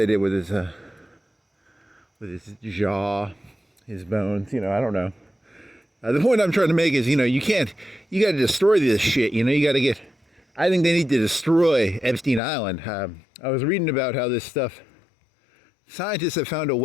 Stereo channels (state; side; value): drops out; right; at 12.4 s